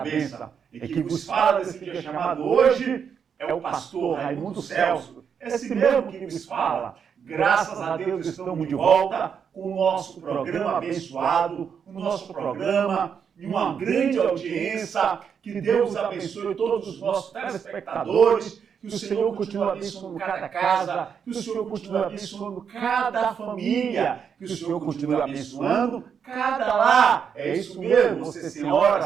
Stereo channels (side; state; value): left; quieter; 7.1 dB